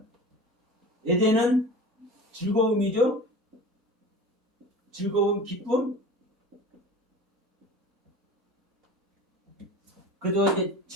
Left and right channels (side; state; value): both; normal; correlation 0.37